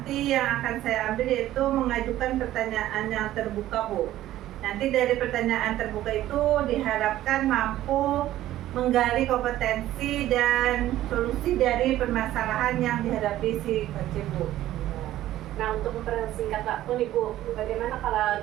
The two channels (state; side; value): quieter; left; 14.0 dB